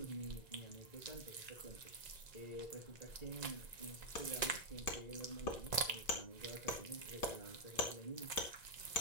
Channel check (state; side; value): late; right; 1.9 ms